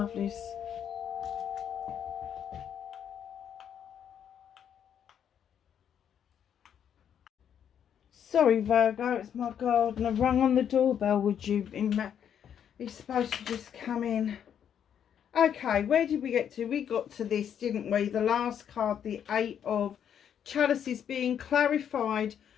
Sorry, Virgo, it's my gardener. Rung on the doorbell. Would you be supposed to just come in? Okay, where did we get to? We got to this, didn't we? The last card, the 8 of Chalices, being clarified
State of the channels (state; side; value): quieter; right; 8.8 dB